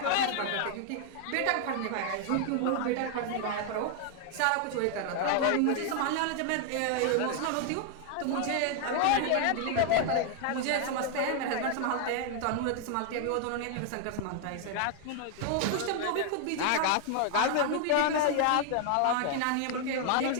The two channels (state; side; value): different; both; correlation 0.00